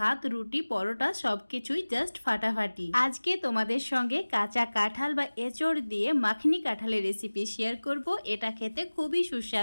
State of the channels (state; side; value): inverted; both; correlation -1.00